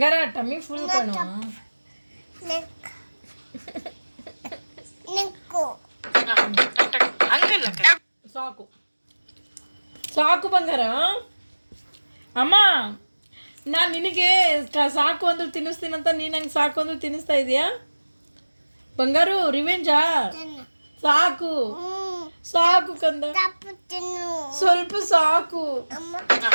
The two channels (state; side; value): inverted; both; correlation -1.00